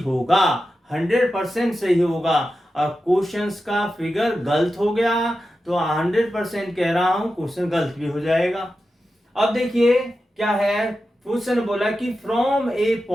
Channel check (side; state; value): both; normal; correlation 0.91